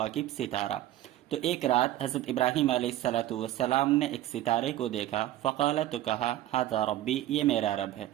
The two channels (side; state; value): left; quieter; 14.0 dB